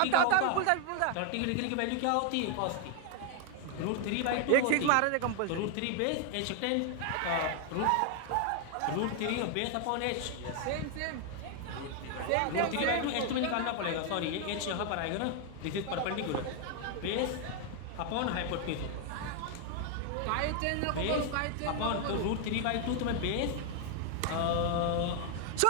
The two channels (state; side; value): different; both; correlation 0.00